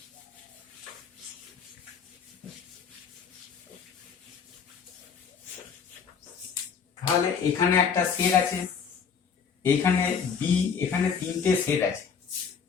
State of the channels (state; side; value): quieter; right; 6.5 dB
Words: তাহলে এখানে একটা সেট আছে, এখানে বি, এখানে তিনটে সেট আছে,